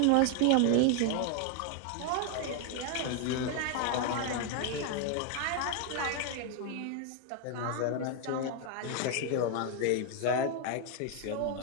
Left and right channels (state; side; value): different; both; correlation 0.01